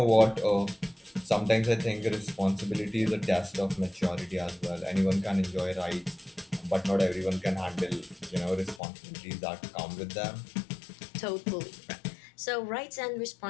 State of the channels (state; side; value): drops out; right; at 8.8 s